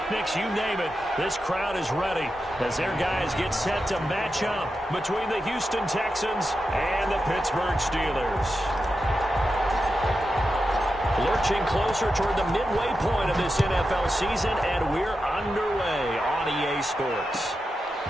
you name it. This crowd is ready as their guys get set to match up between the Houston Texans and the Pittsburgh Steelers. Lurching closer toward the midway point of this NFL season, and we're underway on EA Sports.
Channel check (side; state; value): both; normal; correlation 0.89